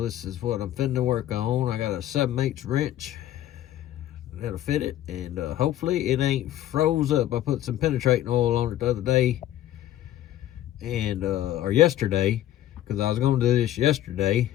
this is what I'm finna work on. I got a 7/8 wrench that'll fit it, and hopefully it ain't froze up. I put some penetrating oil on it the other day, and or yesterday, because I was gonna do this yesterday,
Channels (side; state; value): right; quieter; 12.9 dB